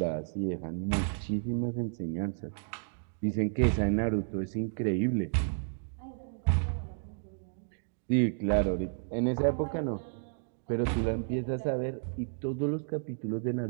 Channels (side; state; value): left; silent; digital silence